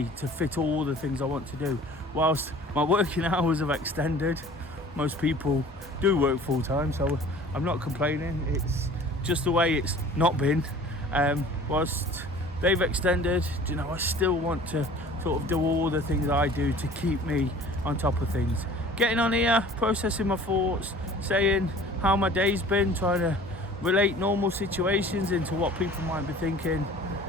to fit all the things I want to do. Whilst my working hours have extended, most people do work full-time, so I'm not complaining. It's just the way it's not been. Whilst they've extended, you know, I still want to sort of do all the things I do to keep me on top of things. Getting on here, processing my thoughts, saying how my day's been, trying to relate normal situations into what people might be thinking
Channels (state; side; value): normal; both; correlation 0.47